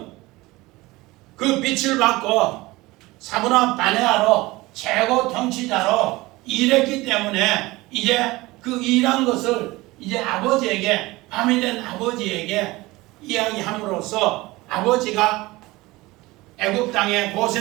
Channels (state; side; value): quieter; left; 20.5 dB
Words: 그 빛을 받고 사브나 바네아로 최고 통치자로 일했기 때문에 이제 그 일한 것을 이제 아버지에게, 밤이 된 아버지에게 이야기함으로써 아버지가 애굽 땅에,